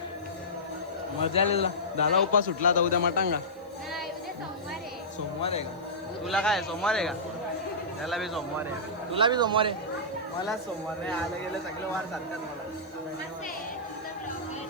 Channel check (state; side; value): noise; right; hiss, 29 dB below the sound